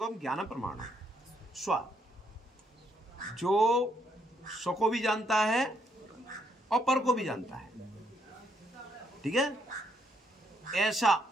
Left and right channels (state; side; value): normal; both; correlation 0.73